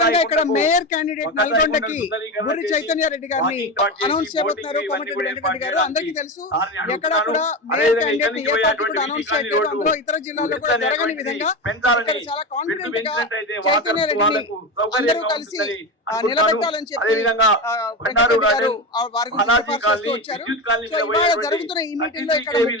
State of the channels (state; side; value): normal; both; correlation 0.20